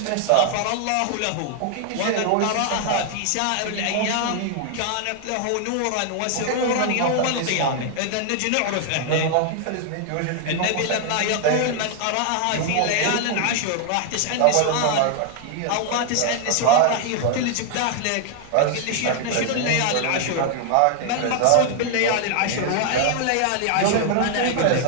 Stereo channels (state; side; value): different; both; correlation 0.00